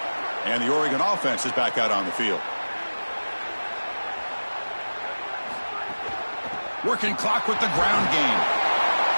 And the Oregon offense is back out on the field. Working clock with the ground game.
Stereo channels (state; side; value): inverted; both; correlation -1.00